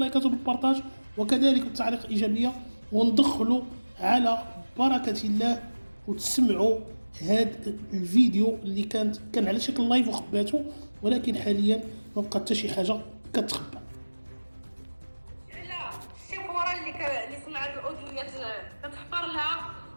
وبالبارطاج وكذلك بالتعليق الايجابيه، وندخلوا على بركه الله وتسمعوا هذا الفيديو اللي كان على شكل لايف وخباته، ولكن حاليا ما بقى حتى شي حاجه كتخبى. على الشيفوره اللي سمعت الاوديوات كتحفر لها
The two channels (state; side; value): inverted; both; correlation -1.00